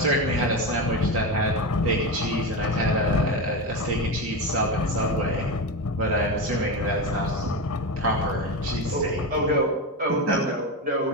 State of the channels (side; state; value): both; normal; correlation 0.18